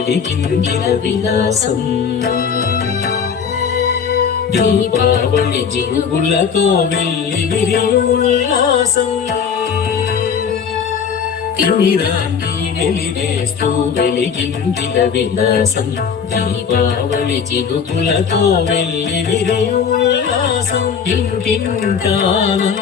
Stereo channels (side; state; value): right; quieter; 6.7 dB